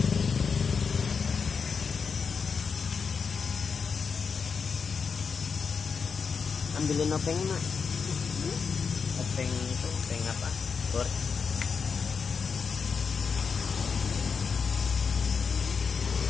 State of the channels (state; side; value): quieter; right; 5.7 dB